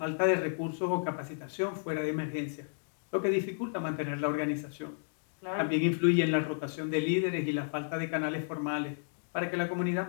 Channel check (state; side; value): silent; right; digital silence